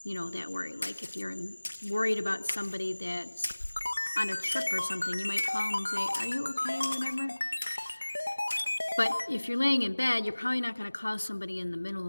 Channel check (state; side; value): inverted; both; correlation -1.00